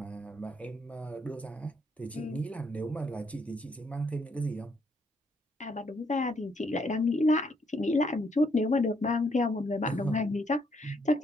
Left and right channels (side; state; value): both; normal; correlation 0.72